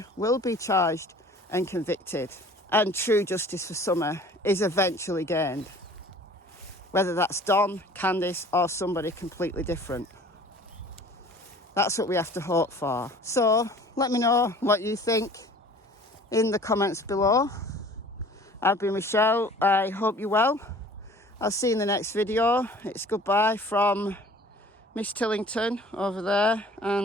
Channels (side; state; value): both; normal; correlation 0.48